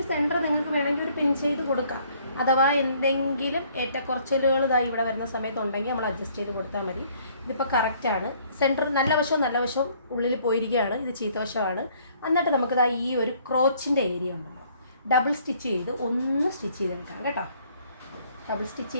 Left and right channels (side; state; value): both; inverted; correlation -0.61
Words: സെൻറ്റർ നിങ്ങൾക്ക് വേണമെങ്കിൽ ഒരു പിൻ ചെയ്ത് കൊടുക്കാം. അഥവാ എന്തെങ്കിലും ഏറ്റക്കുറച്ചിലുകൾ ഇതായി ഇവിടെ വരുന്ന സമയത്തുണ്ടെങ്കിൽ നമ്മൾ അഡ്ജസ്റ്റ് ചെയ്ത് കൊടുത്താൽ മതി. ഇതിപ്പോൾ കറക്റ്റാണ്. സെൻറ്റർ നല്ല വശവും ഉള്ളിൽ പോയിരിക്കുകയാണ്. ഇത് ചീത്ത വശമാണ്. എന്നിട്ട് നമുക്കിതാ ഈ ഒരു ക്രോച്ചിൻ്റെ ഏരിയ ഉണ്ടല്ലോ, ഡബിൾ സ്റ്റിച്ച് ചെയ്ത് ഒന്ന് സ്റ്റിച്ച് ചെയ്തെടുക്കാം കേട്ടോ. ഡബിൾ സ്റ്റിച്ച്